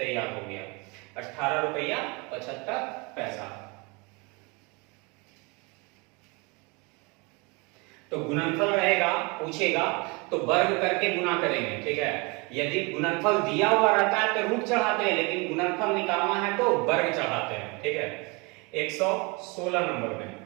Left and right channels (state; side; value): quieter; left; 28.7 dB